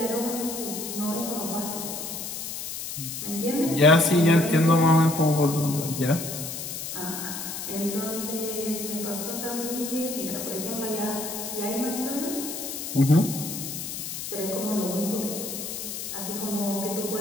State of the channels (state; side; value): noise; left; hiss, 6 dB below the sound